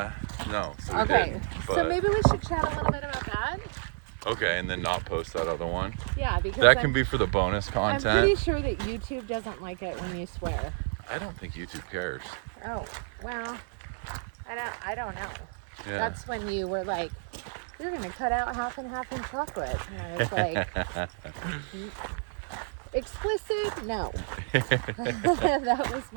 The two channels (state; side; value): silent; left; 58 dB below the other